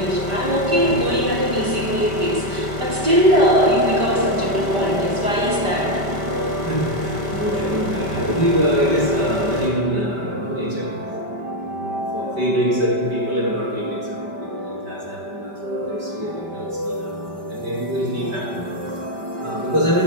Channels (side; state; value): left; late; 5.1 ms